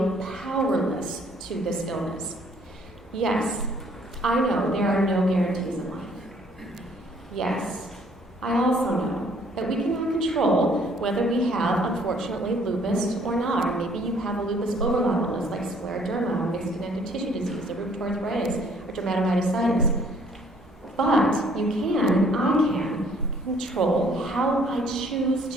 powerless to this illness. Yes, I know there are no guarantees in life. Yes, I also know that we cannot control whether we have, unfortunately, lupus or not, or maybe you have a lupus overlap illness like scleroderma, or mixed connective tissue disease, or rheumatoid arthritis, or dermatomyositis. But you can, I can, control how I choose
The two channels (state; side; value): normal; both; correlation 0.61